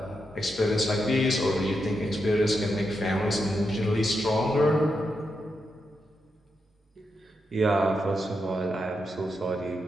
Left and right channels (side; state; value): both; normal; correlation 0.85